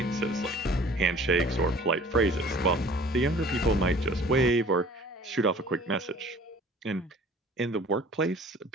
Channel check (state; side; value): normal; both; correlation 0.50